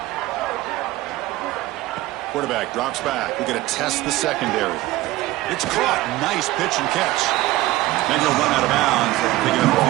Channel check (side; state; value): left; quieter; 17.4 dB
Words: Quarterback drops back. We're going to test the secondary. It's caught. Nice pitch and catch. And he'll run out of bounds, picking up a